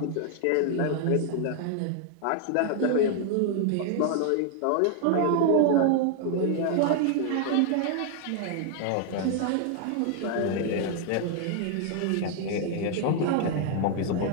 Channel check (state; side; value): different; both; correlation 0.00